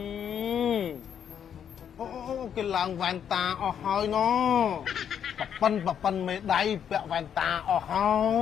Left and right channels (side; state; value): right; quieter; 8.6 dB